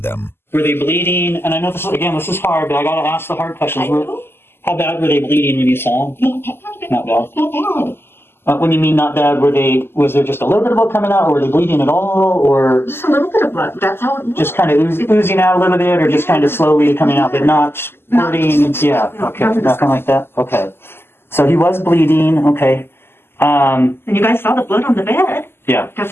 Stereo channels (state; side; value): late; right; 0.11 ms